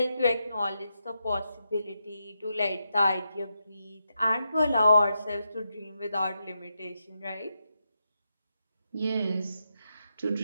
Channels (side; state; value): both; inverted; correlation -0.85